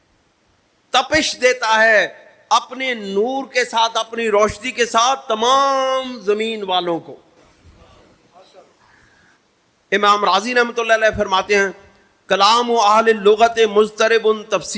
تپش دیتا ہے اپنے نور کے ساتھ، اپنی روشنی کے ساتھ تمام زمین والوں کو. امام رازی رحمۃ اللہ علیہ فرماتے ہیں کلام اہل اللغت مضطرب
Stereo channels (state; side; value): identical; both; correlation 1.00